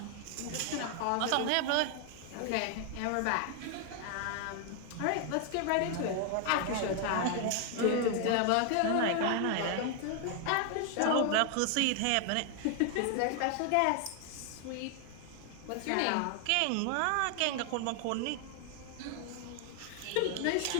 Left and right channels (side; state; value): both; different; correlation 0.00